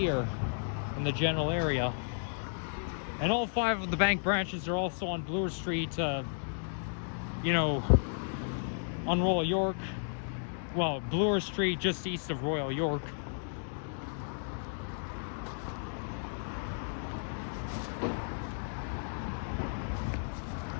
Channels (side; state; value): right; silent; digital silence